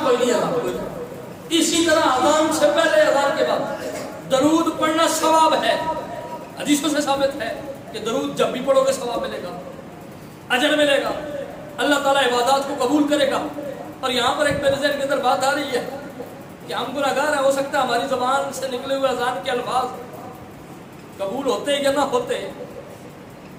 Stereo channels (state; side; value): identical; both; correlation 1.00